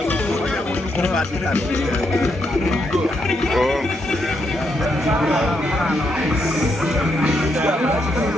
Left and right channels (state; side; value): normal; both; correlation 0.79